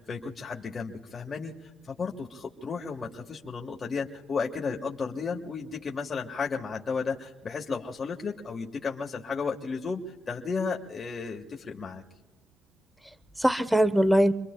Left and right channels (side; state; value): both; normal; correlation 0.90